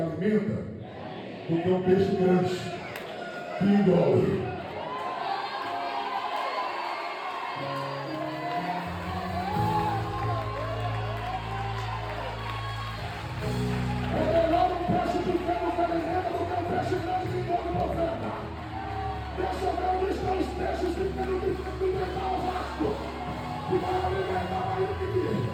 do que um peixe grande que engole.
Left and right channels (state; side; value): identical; both; correlation 1.00